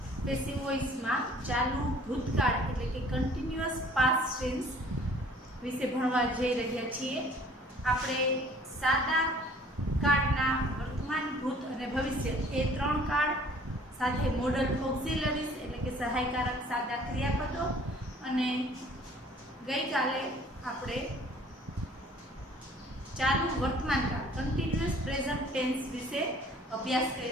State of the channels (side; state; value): both; normal; correlation 0.54